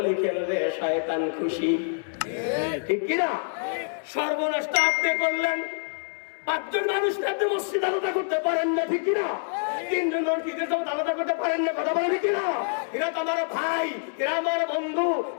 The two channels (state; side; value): silent; right; digital silence